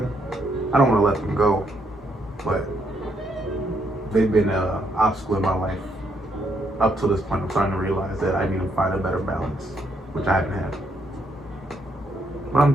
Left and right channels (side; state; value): both; normal; correlation 0.74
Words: I don't want to let them go, but they've been an obstacle in my life up to this point. I'm starting to realize that I need to find a better balance, which I haven't had. But I'm